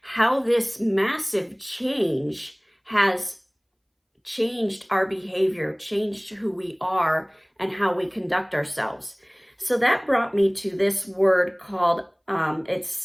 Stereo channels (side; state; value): both; identical; correlation 1.00